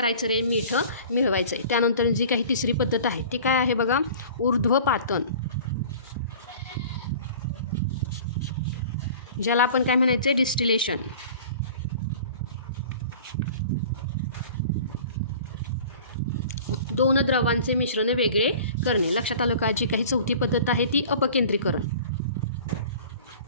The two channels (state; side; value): inverted; both; correlation -0.43